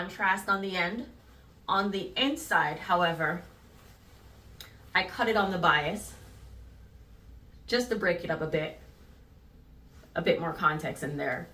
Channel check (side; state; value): both; identical; correlation 1.00